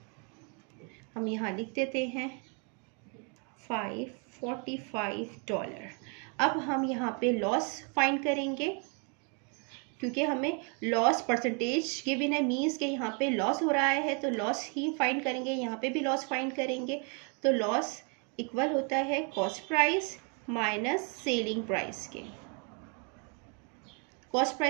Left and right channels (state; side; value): quieter; left; 37.0 dB